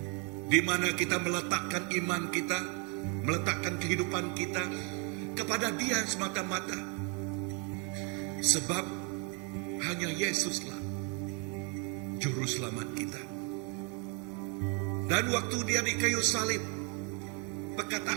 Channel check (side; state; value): left; quieter; 35.2 dB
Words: di mana kita meletakkan iman kita, meletakkan kehidupan kita kepada Dia semata-mata, sebab hanya Yesuslah juru selamat kita. Dan waktu Dia di kayu salib,